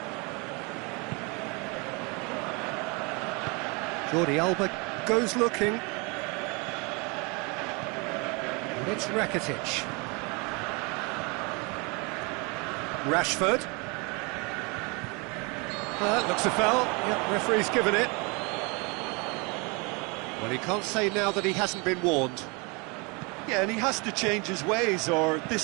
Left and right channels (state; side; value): quieter; left; 29.8 dB